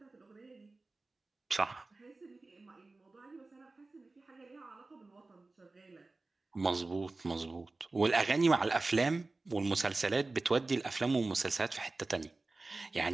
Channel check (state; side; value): quieter; left; 3.4 dB